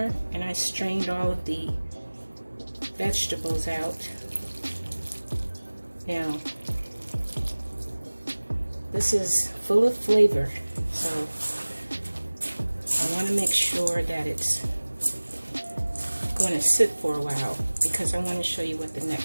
and I strained all of the vegetables out. Now, this is full of flavor, so I want to make sure that it's going to sit for a while because I want to show you what the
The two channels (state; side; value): inverted; both; correlation -1.00